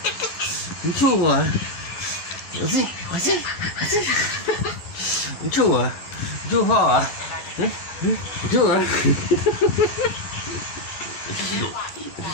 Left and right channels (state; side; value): late; right; 11 ms